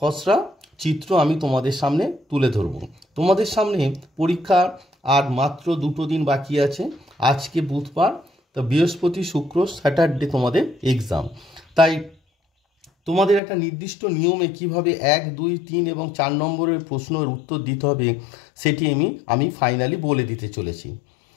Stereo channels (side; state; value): right; drops out; at 13.4 s